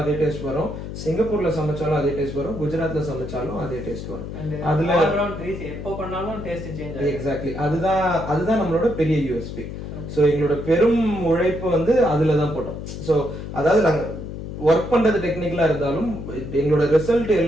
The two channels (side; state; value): left; noise; hum, 8 dB below the sound